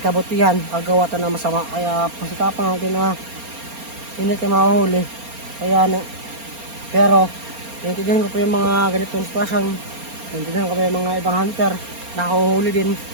kagawa tayo ng masama. Kaya pasikapan natin na hindi tayo mahuhuli. Pero naintindihan ko po yung mga ganitong sitwasyon. Naintindihan ko po yung mga ibang hunter nakahuhuli din.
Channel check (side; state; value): left; late; 4.3 ms